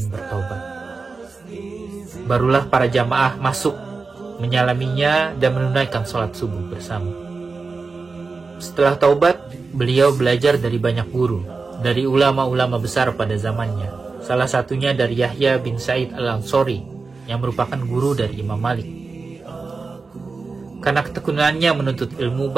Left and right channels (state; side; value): quieter; left; 4.2 dB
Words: bertobat. Barulah para jamaah masuk, menyalaminya dan menunaikan sholat subuh bersama. Setelah taubat, beliau belajar dari banyak guru, dari ulama-ulama besar pada zamannya. Salah satunya dari Yahya bin Sa'id al-Ansori, yang merupakan guru dari Imam Malik. Karena ketekunannya menuntut ilmu,